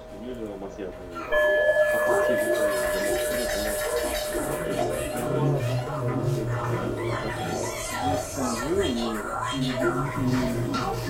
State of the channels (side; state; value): both; identical; correlation 1.00